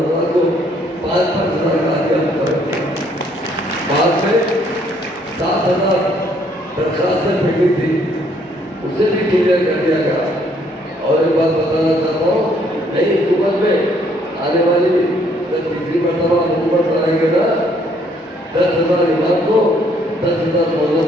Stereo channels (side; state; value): both; normal; correlation 0.66